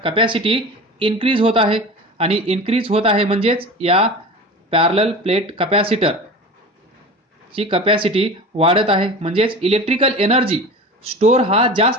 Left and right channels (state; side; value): normal; both; correlation 0.33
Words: कपॅसिटी इन्क्रीज होत आहे, आणि इन्क्रीज होत आहे म्हणजेच या पॅरलल प्लेट कपॅसिटर ची कपॅसिटी वाढत आहे, म्हणजेच इलेक्ट्रिकल एनर्जी स्टोर हा